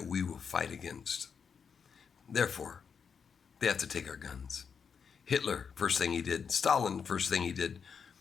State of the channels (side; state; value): right; quieter; 6.4 dB